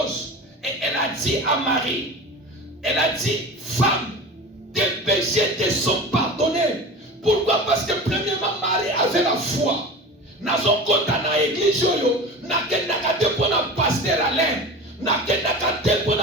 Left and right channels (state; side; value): normal; both; correlation 0.33